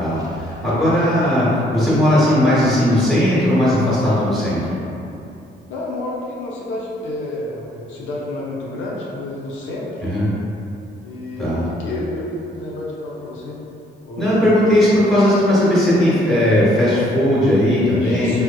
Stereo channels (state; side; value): normal; both; correlation 0.66